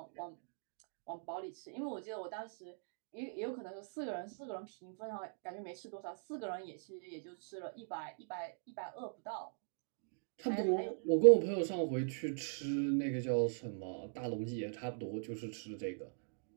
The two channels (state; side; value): silent; left; digital silence